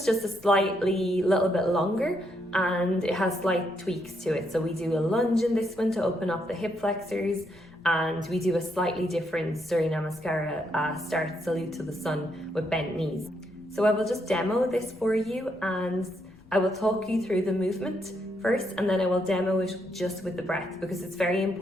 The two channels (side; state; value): left; noise; rumble, 26 dB below the sound